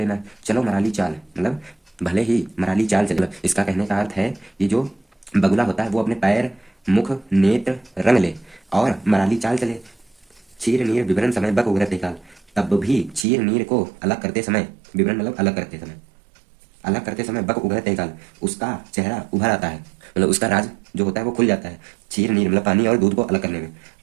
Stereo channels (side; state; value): left; drops out; at 13.2 s